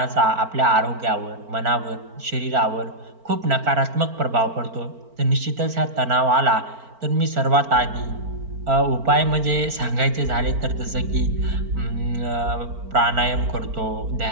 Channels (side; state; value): left; late; 4.4 ms